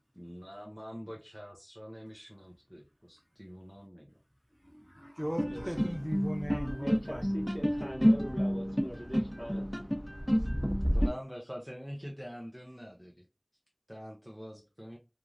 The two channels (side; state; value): both; identical; correlation 1.00